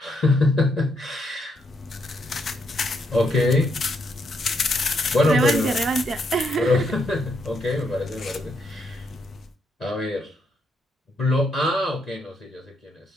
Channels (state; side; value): normal; both; correlation 0.77